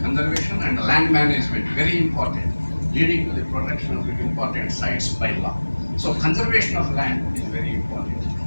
and the land management, very important, leading to the protection of the important sites by law. So conservation of land is very important.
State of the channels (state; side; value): inverted; both; correlation -1.00